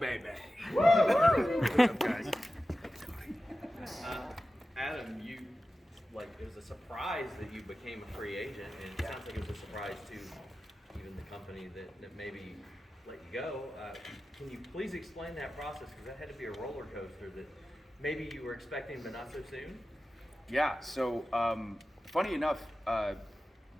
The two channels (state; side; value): normal; both; correlation 0.94